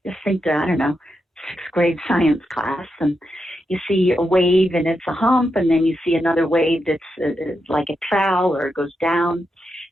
Just think, I don't know, 6th grade science class, and you see a wave and it's a hump, and then you see another wave that's like a trowel or it goes down.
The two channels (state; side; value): normal; both; correlation 0.86